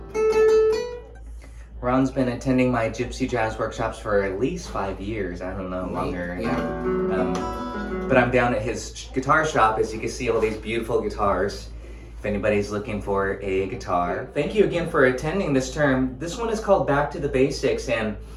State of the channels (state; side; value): identical; both; correlation 1.00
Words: Ron's been attending my Gypsy jazz workshops for at least 5 years. I don't know, longer. Yeah. But I'm down at his guitar shop. As you can see, all these beautiful guitars. If anybody's looking for a guitar. Thank you again for attending this term. This one is called Back to the Basics, and